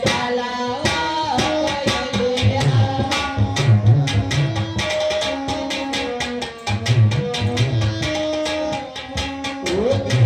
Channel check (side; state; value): both; identical; correlation 1.00